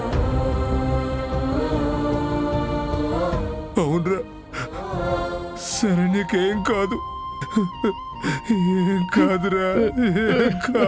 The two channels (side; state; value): both; identical; correlation 1.00